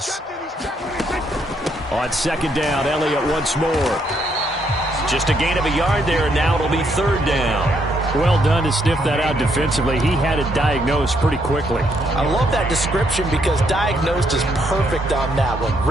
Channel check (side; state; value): both; normal; correlation 0.73